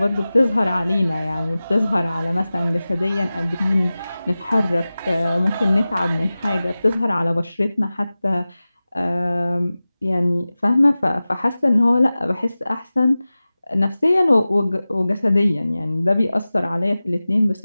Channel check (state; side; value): inverted; both; correlation -0.97